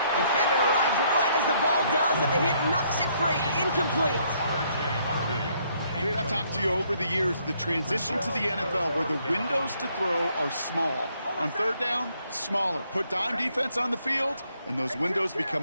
Defender arrives right as the ball does, and the hit knocks it free. Incomplete. Okay, I've talked to you over the years, the transition to the NFL where the windows to throw are small. On 3rd down, smaller. Put dime defense on the field, and those windows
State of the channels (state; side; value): inverted; both; correlation -0.69